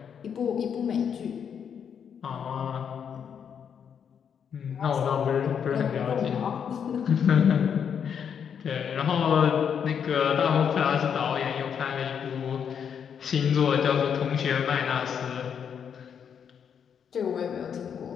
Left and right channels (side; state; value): right; quieter; 7.6 dB